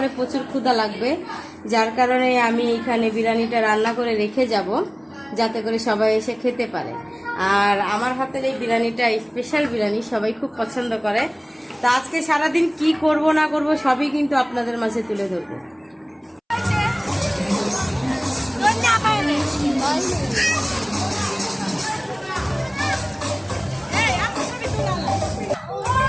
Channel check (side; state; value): both; identical; correlation 1.00